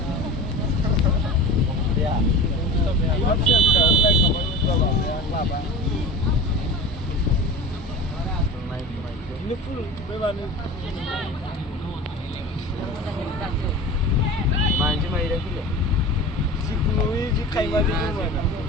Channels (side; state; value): both; normal; correlation 0.34